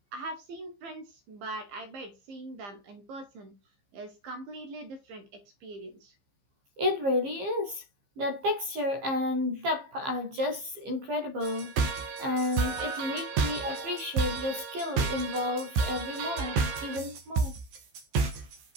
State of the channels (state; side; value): late; left; 15 ms